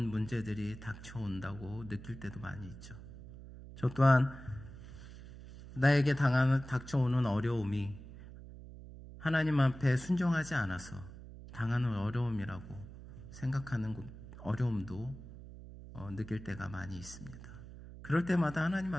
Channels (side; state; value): right; noise; hum, 15 dB below the sound